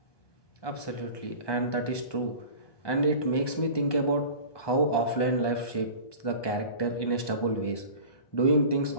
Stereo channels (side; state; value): right; late; 1.2 ms